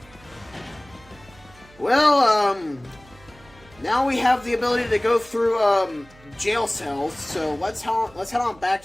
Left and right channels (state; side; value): noise; right; hum, 25 dB below the sound